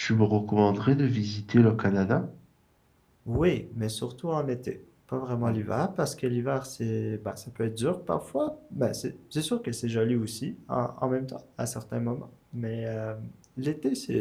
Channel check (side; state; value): both; identical; correlation 1.00